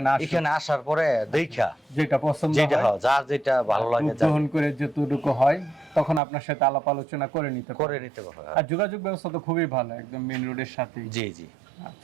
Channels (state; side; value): drops out; left; at 6.2 s